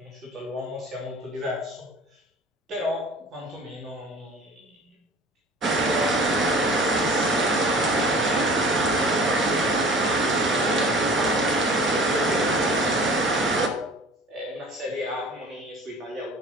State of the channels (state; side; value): normal; both; correlation 0.44